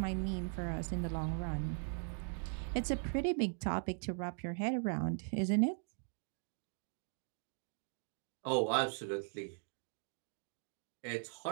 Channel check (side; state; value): left; silent; 51 dB below the other